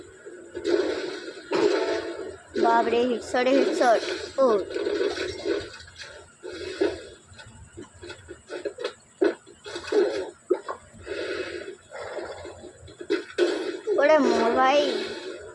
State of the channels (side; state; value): both; identical; correlation 1.00